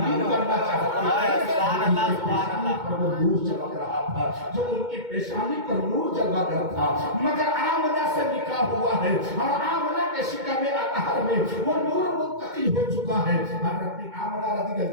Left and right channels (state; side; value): late; left; 2.2 ms